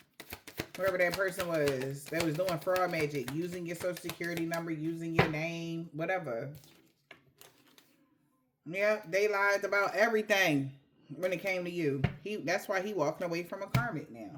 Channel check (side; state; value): both; identical; correlation 1.00